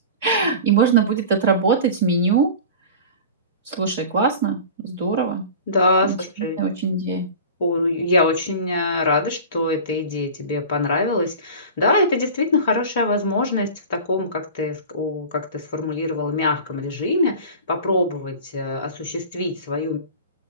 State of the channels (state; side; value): inverted; both; correlation -0.35